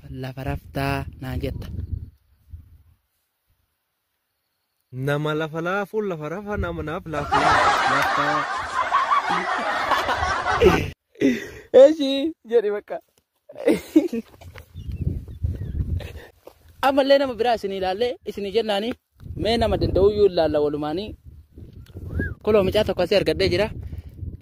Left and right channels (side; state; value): both; identical; correlation 1.00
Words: lafa raftaa naan jetta. Nama lafa laafu lafa rafa nama naaf laftaa. Eeshi jedhi bakka. Ammallee nama biraa isin ilaalle isin jennaani mee nama danda'u iyyuu ilaalla walumaanii. Koloo mucaa tokko asii argadhee jira